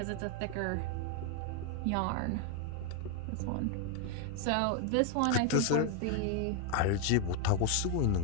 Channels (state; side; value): different; both; correlation 0.01